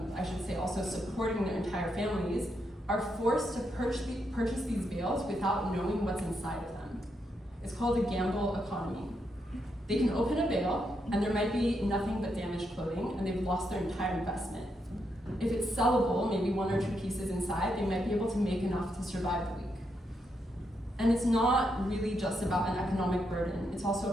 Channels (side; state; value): both; normal; correlation 0.81